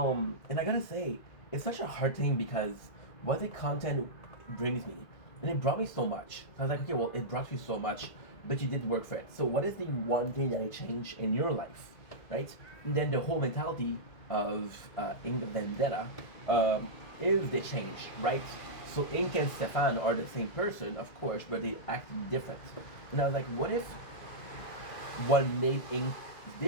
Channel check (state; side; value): late; right; 2.0 ms